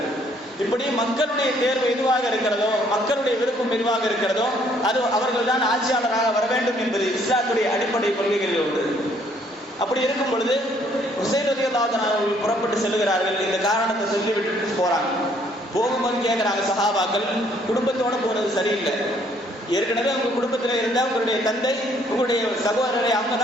இப்படி மக்களுடைய தேர்வு எதுவாக இருக்கிறதோ, மக்களுடைய விருப்பம் எதுவாக இருக்கிறதோ அது அவர்கள் தான் ஆட்சியாளராக வர வேண்டும் என்பது இஸ்லாத்துடைய அடிப்படை கொள்கைகளில் ஒன்று. அப்படி இருக்கும் பொழுது ஹுசைன் ரலியல்லாஹு அன்ஹு அவர்கள் புறப்பட்டு செல்கிறார்கள். இந்த காரணத்தை சொல்லி விட்டுட்டு போறாங்க. போகும்போது கேட்கிறாங்க சஹாபாக்கள், குடும்பத்தோட போறது சரியில்லை, ஏற்கனவே உங்க குடும்பத்தில் இருந்தா உங்களுடைய தந்தை உங்களுடைய சகோதரரை அவங்க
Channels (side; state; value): both; normal; correlation 0.65